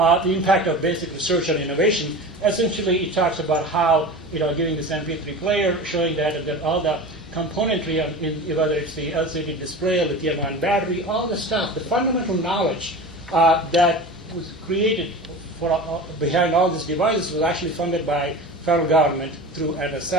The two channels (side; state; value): both; normal; correlation 0.32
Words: impact of basic research on innovation. Essentially, it talks about how, giving this MP3 player, showing that all the componentry, whether it's the LCD display, lithium-ion battery, all the stuff, the fundamental knowledge that was created behind all these devices was actually funded by federal government through